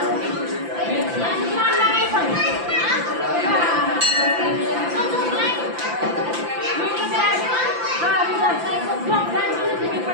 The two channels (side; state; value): left; late; 5.9 ms